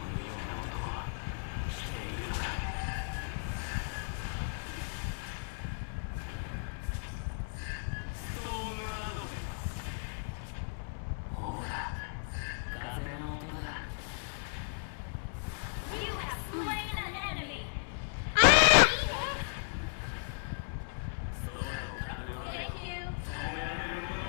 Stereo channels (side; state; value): right; silent; 54 dB below the other